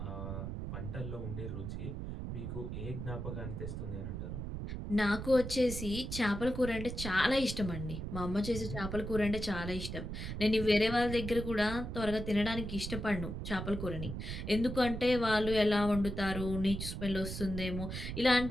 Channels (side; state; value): right; noise; rumble, 6 dB below the sound